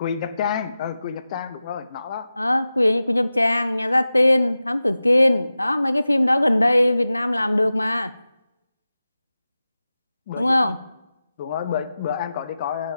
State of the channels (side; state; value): both; inverted; correlation -0.95